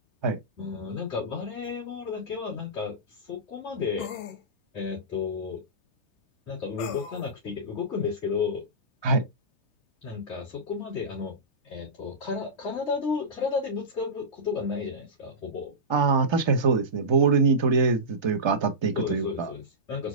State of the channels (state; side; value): late; right; 3.3 ms